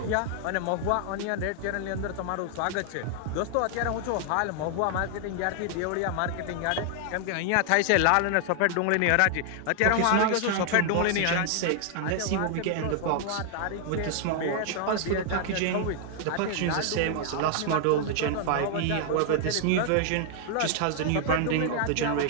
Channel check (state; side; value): different; both; correlation 0.00